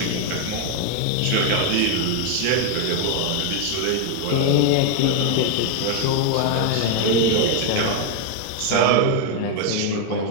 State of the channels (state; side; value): different; both; correlation 0.01